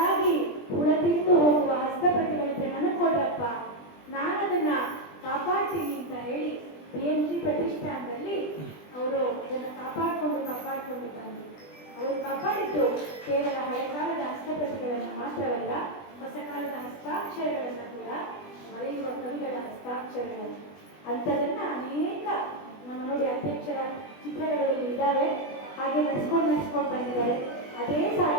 ಹುಳ ತಿಂದು ಹೋಗುವ ಹಸ್ತಪ್ರತಿಗಳಿದ್ರೆ ನನಗೆ ಕೊಡ್ರಪ್ಪ, ನಾನದನ್ನ ಕಾಪಾಡ್ತೀನಿ ಅಂತ ಹೇಳಿ BM ಶ್ರೀ ಪ್ರತಿಷ್ಠಾನದಲ್ಲಿ ಅವರು ಅದನ್ನ ಕಾಪಾಡಿಕೊಂಡು ಬಂದು ಅವರು ಕಾಪಾಡಿದ್ದು ಕೇವಲ ಹಳೆ ಕಾಲದ ಹಸ್ತಪ್ರತಿಗಳನ್ನು ಮಾತ್ರವಲ್ಲ, ಹೊಸ ಕಾಲದ ಹಸ್ತಾಕ್ಷರಗಳನ್ನು ಕೂಡ, ಬರೆಯುವ ಕವಿಗಳ ಹಸ್ತಾಕ್ಷರಗಳನ್ನು. ಅಂಥದನ್ನ ಅನೇಕ ನಮ್ಮ ನೋಡಿ ಅಧ್ಯಕ್ಷರ ಚಿತ್ರಗಳು ಇದ್ದಾವೆ, ಹಾಗೆ ನಡೆಸ್ಕೊಂಡು ಬಂದಿದ್ದಾರೆ. ಅದೇ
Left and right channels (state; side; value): late; right; 20 ms